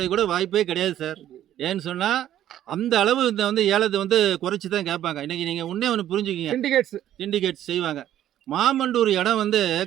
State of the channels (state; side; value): quieter; left; 11.9 dB